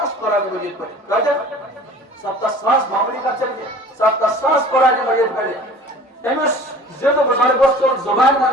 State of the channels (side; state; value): both; normal; correlation 0.45